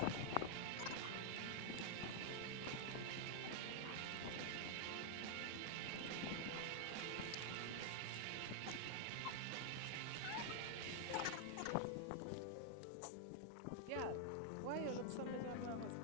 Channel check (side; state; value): both; different; correlation -0.01